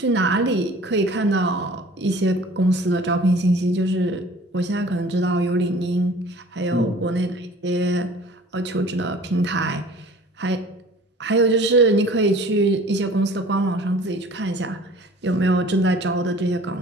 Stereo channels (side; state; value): both; normal; correlation 0.48